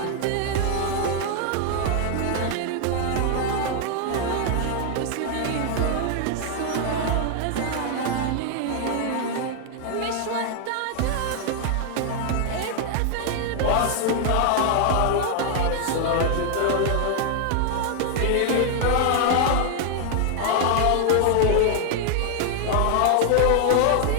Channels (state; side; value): different; both; correlation 0.00